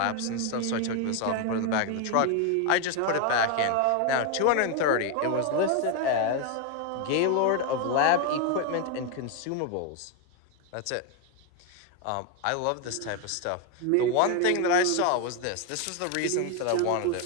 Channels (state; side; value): different; both; correlation 0.01